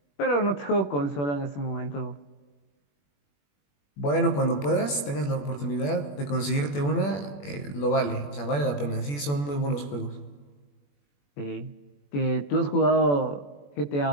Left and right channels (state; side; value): late; right; 21 ms